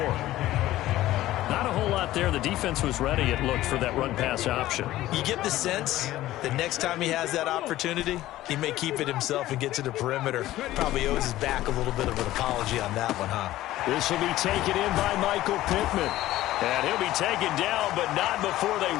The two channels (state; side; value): quieter; right; 15.3 dB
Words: Not a whole lot there. The defense was ready, it looked, for that run-pass option. You get the sense that next time he has that opportunity, he may keep it himself and get to the perimeter. Probably owes his back a little bit of an apology on that one, huh? This will be taken in by Michael Pittman. And he'll be taken down, but not before they